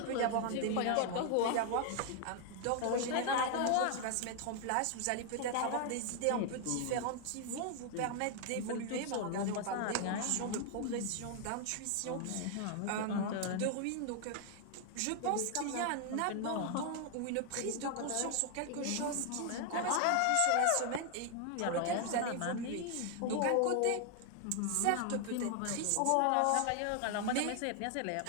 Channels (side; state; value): both; different; correlation 0.00